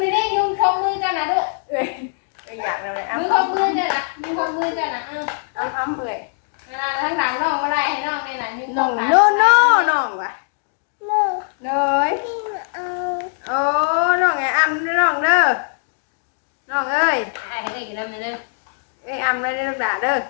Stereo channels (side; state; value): right; silent; digital silence